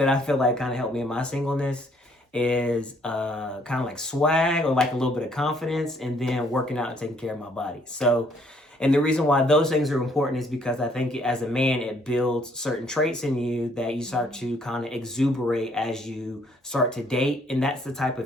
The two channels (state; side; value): normal; both; correlation 0.65